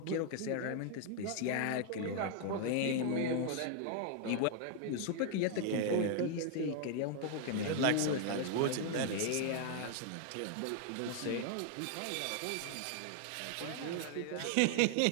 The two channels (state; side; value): different; both; correlation 0.00